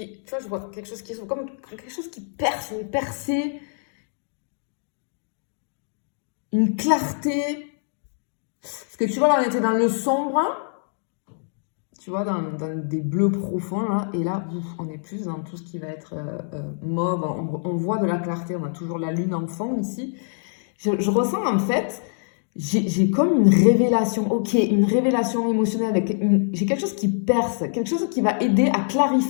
tu vois, je vois quelque chose qui s'ouvre, comme quelque chose qui perce, une percée, une clarté. Parce que tu vois, là, on était dans le sombre, tu vois, dans des bleus profonds, là, et là, on est plus dans tout ce qui va être mauve, on voit de la clarté, on a toujours la lune en fond ici. Je ressens, en fait, j'ai comme une révélation, ok, une révélation émotionnelle, j'ai quelque chose qui perce, quelque chose qui va aider à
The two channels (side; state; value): right; silent; digital silence